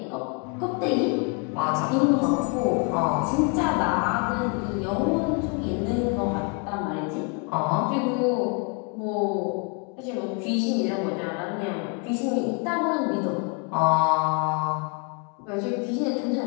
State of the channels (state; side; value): quieter; right; 32.9 dB